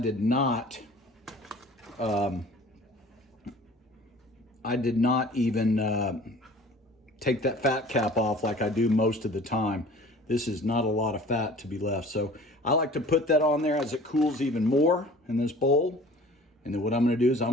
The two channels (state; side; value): normal; both; correlation 0.47